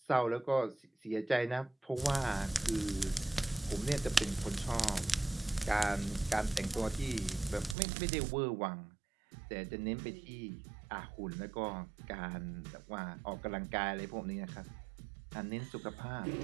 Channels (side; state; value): left; drops out; at 7.8 s